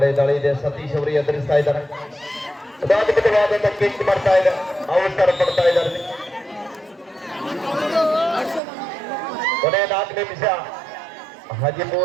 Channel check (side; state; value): left; drops out; at 8.6 s